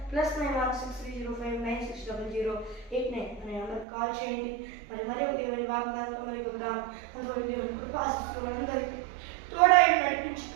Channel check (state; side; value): drops out; left; at 3.9 s